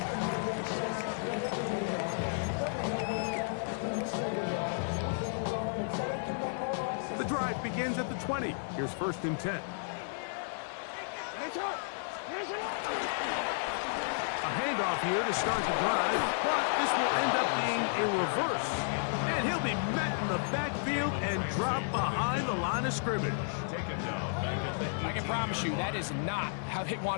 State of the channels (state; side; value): silent; right; digital silence